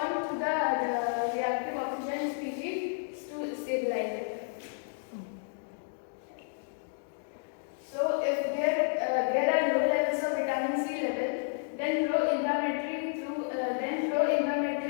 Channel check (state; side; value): silent; right; digital silence